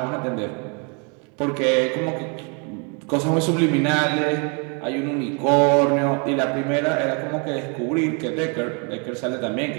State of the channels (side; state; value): left; quieter; 35.6 dB